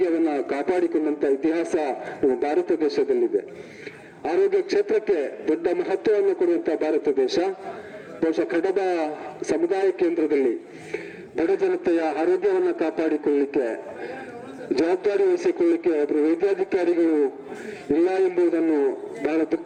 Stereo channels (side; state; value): both; identical; correlation 1.00